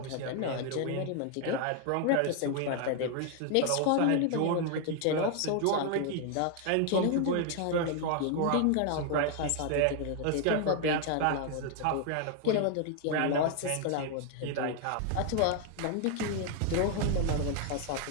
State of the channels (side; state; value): both; different; correlation 0.00